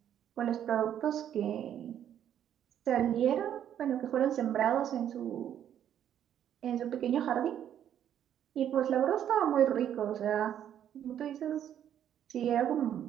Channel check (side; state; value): left; quieter; 10.1 dB